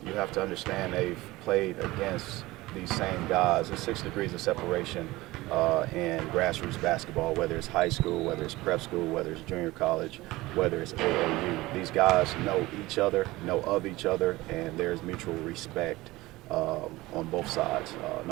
you have to understand they've played against these same guys. There's 6 degrees of separation in grassroots basketball, whether it's high school, whether it's prep school, whether it's junior college, whether it's AAU. These guys know each other, know of each other, and there's mutual respect on both sides.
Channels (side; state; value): left; quieter; 19.4 dB